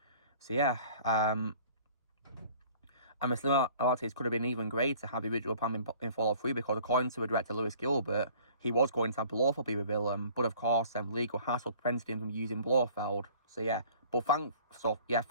So yeah, and the similarities could have been even greater had the original plan been followed through because according to the director Lewis Gilbert, he was going to have Blofeld be the villain, but of course legal hassle prevented him from using Blofeld. So yeah,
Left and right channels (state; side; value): inverted; both; correlation -0.51